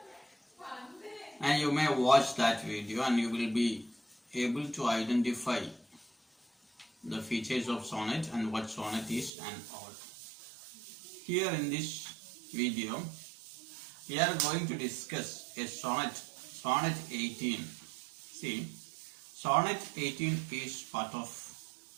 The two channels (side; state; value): left; drops out; at 9.3 s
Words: and you may watch that video and you will be able to identify the features of sonnet and what sonnet is and all. Here in this video we are going to discuss a sonnet 18. See, sonnet 18 is part of